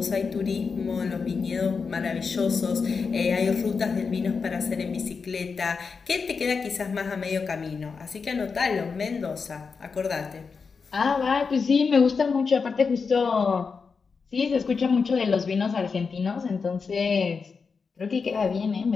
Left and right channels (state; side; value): quieter; right; 5.2 dB